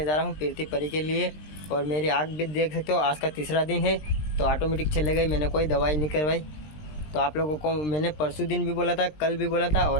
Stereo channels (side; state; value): right; late; 20 ms